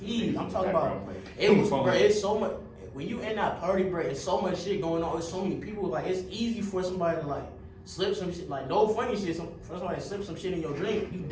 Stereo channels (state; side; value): identical; both; correlation 1.00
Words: I'm talking about. It was, bro. It's so much. When you in that party, bro, it's so much shit going on. It's so many people. Like it's easy for somebody to like slip some shit. Like no funny shit. For somebody to slip some shit in your drink, you